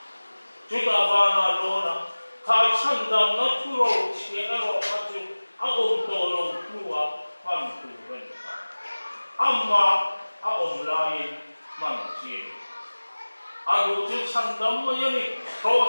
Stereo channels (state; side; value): inverted; both; correlation -1.00